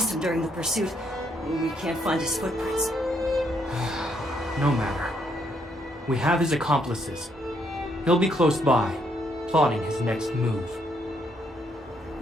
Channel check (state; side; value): normal; both; correlation 0.73